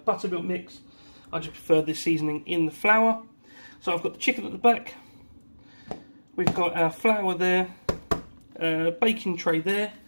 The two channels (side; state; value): both; inverted; correlation -1.00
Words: buttermilk mix. I just prefer this seasoning in the flour. So I've got the chicken at the back, we've got our flour there, baking tray there,